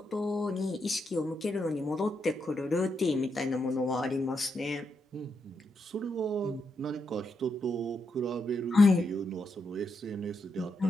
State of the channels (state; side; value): normal; both; correlation 0.82